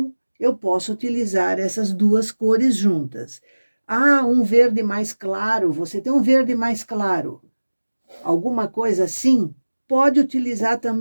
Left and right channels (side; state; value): both; inverted; correlation -1.00